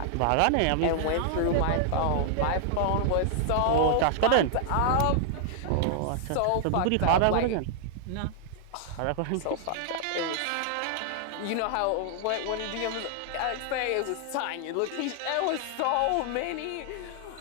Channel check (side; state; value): both; different; correlation 0.00